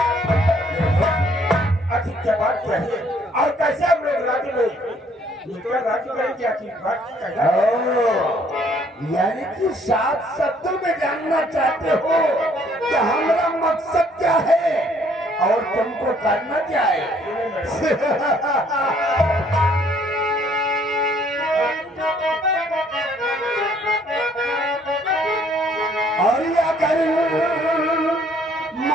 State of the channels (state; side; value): normal; both; correlation 0.63